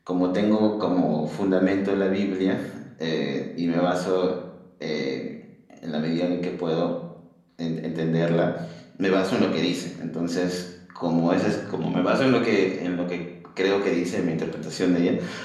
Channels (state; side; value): identical; both; correlation 1.00